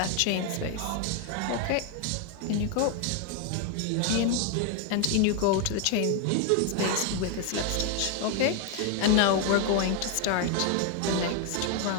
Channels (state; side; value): different; both; correlation 0.01